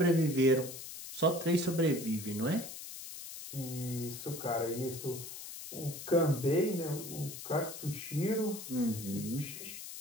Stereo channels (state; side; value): noise; left; hiss, 10 dB below the sound